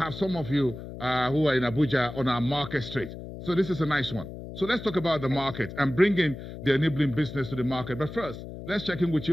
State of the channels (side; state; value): left; noise; hum, 11 dB below the sound